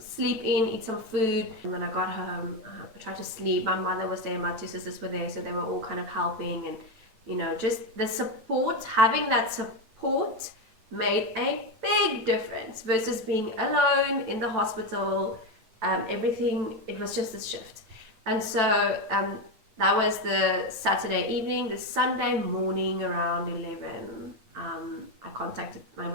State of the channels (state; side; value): late; left; 9.1 ms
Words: in, eat some food. And when I got home, I tried to sleep. My mother was there, my two sisters were there, so they were all kind of helping. And, you know, just the support, having that support made a big difference versus being alone in the hospital. Everything, it was just a shift. And so that was the Saturday evening. The Sunday morning around 11, I contacted my